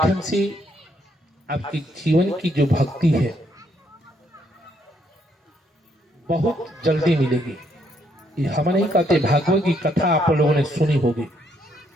से आपकी जीवन की जो भक्ति है बहुत जल्दी मिलेगी। ये हम नहीं कहते, भागवत की कथा आप लोगों ने सुनी होगी।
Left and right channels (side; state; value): both; normal; correlation 0.72